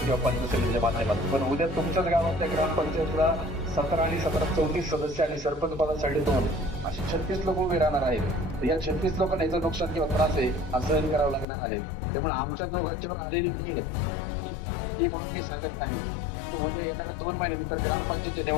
किंवा पंचायत समितीच्या माध्यमातून, पण उद्या तुमच्याच गावातल्या ग्रामपंचायतला 17 आणि 17 34 सदस्य आणि सरपंच पदासाठी 2 असे 36 लोक उभे राहणार आहेत. या 36 लोकांना याचं नुकसान किंवा त्रास आहे हा सहन करावं लागणार आहे. त्यामुळे आमच्या दोघांच्यावर आलेली वेळ आली म्हणून मी सांगत नाही, परंतु उद्या येणाऱ्या 2 महिन्यानंतर ग्रामपंचायतच्या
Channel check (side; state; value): right; drops out; at 11.5 s